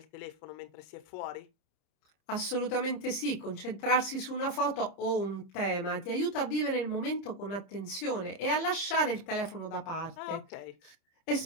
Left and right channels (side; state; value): right; late; 30 ms